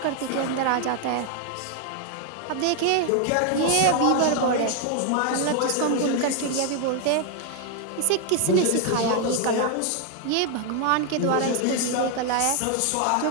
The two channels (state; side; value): different; both; correlation 0.01